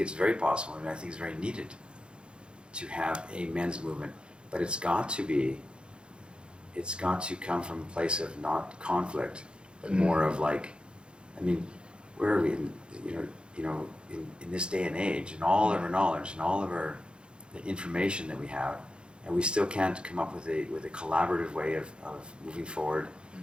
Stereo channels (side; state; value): left; late; 0.054 ms